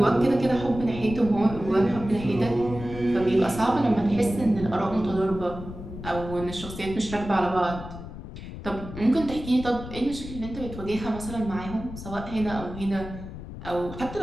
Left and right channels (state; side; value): noise; left; rumble, 11 dB below the sound